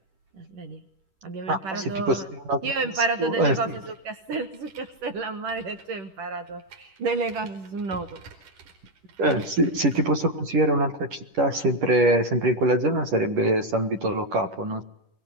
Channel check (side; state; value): left; late; 10 ms